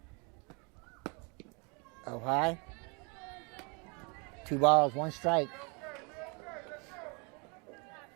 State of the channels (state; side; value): quieter; left; 32.5 dB